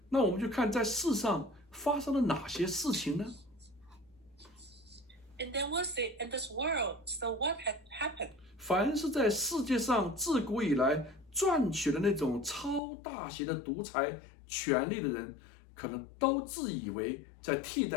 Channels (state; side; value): drops out; right; at 12.8 s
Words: 那我们就看在世上发生了哪些事情呢？ And then we'll see in this world, so what had happened? 凡是在世界上自古以来赚取了那种超大型的独裁权力的人，可能都自以为在替